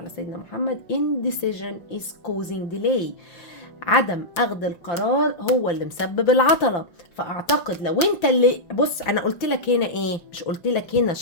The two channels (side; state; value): right; late; 5.9 ms